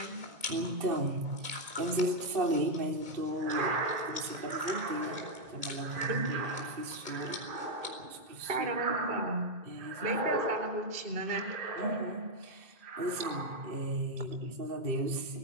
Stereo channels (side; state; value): left; late; 2.5 ms